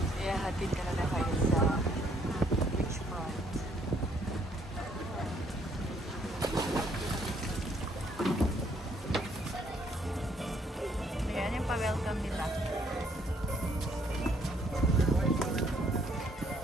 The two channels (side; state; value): both; normal; correlation 0.67